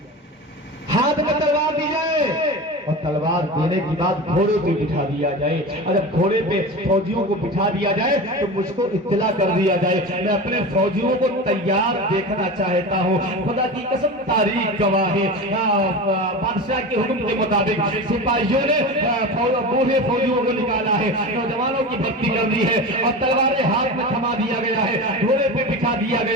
ہاتھ میں تلوار دی جائے اور تلوار دینے کے بعد گھوڑے پہ بٹھا دیا جائے. اور جب گھوڑے پہ فوجیوں کو بٹھا دیا جائے تو مجھ کو اطلاع کر دیا جائے. میں اپنے فوجیوں کو تیار دیکھنا چاہتا ہوں. خدا کی قسم تاریخ گواہ ہے, بادشاہ کے حکم کے مطابق سپاہیوں نے بوڑھے فوجیوں کو نکالا ہے, نوجوانوں کی بھرتی کر دی ہے اور تلواریں ہاتھ میں تھما دیا گیا ہے, گھوڑے پہ بٹھا دیا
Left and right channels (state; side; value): normal; both; correlation 0.28